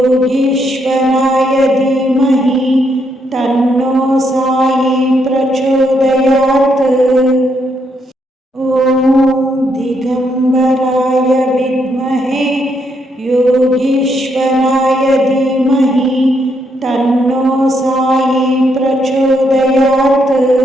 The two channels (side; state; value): both; normal; correlation 0.76